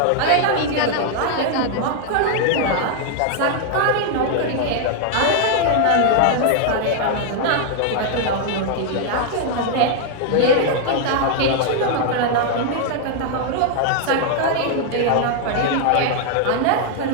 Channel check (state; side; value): different; both; correlation 0.00